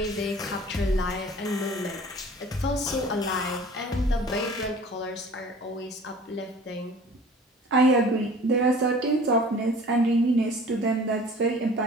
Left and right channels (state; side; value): normal; both; correlation 0.46